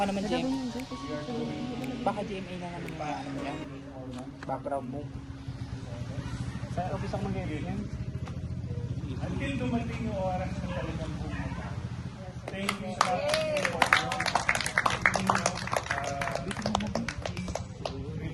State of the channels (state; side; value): identical; both; correlation 1.00